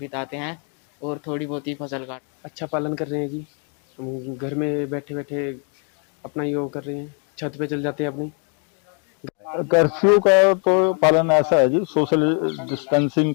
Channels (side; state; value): right; quieter; 39.5 dB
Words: हैं और थोड़ी बहुत ही फसल काट। अच्छा पालन कर रहे हैं जी, हम घर में बैठे बैठे अपना योग कर रहे हैं, छत पे चल जाते हैं अपनी। कर्फ्यू का तो पालन ऐसा है जी, सोशल डिस्टेंसिंग